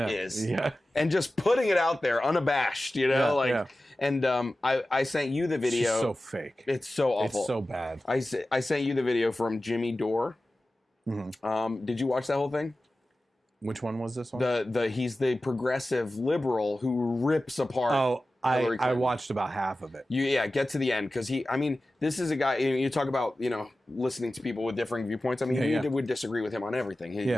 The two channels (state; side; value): normal; both; correlation 0.95